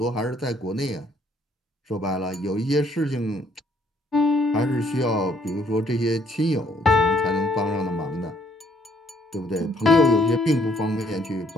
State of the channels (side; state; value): both; normal; correlation 0.66